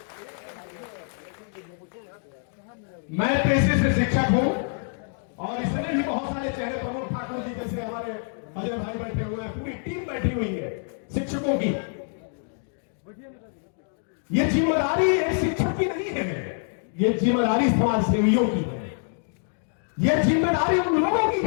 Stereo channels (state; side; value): silent; right; 61 dB below the other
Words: मैं पेशे से शिक्षक हूं और इसमें भी बहुत सारे चेहरे, प्रमोद ठाकुर जी जैसे हमारे अजय भाई बैठे हुए हैं, पूरी टीम बैठी हुई है शिक्षकों की। ये जिम्मेदारी एक शिक्षक की नहीं है, ये जिम्मेदारी समाज सेवियों की है, ये जिम्मेदारी उन लोगों की